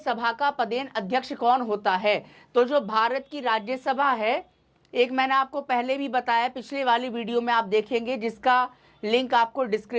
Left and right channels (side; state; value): both; identical; correlation 1.00